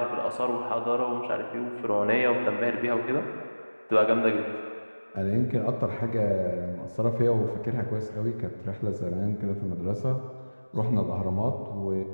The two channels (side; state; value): both; inverted; correlation -1.00